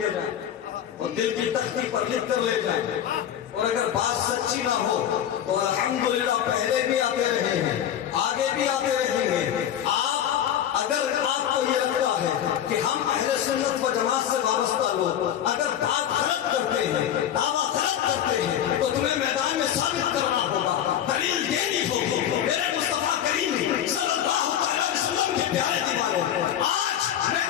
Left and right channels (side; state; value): right; quieter; 10.2 dB